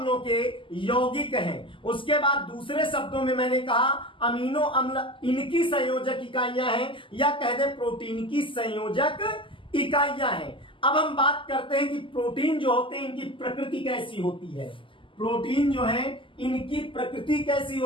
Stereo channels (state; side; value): late; right; 0.25 ms